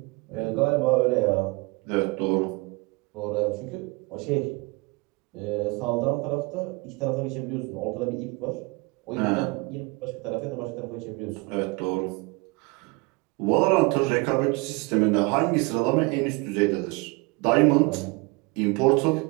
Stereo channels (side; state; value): left; quieter; 27.0 dB